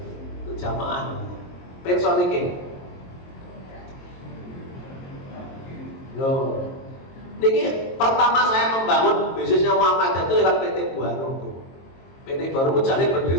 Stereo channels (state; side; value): late; right; 22 ms